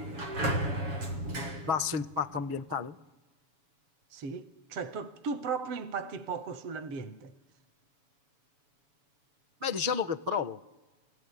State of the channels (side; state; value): left; late; 7.1 ms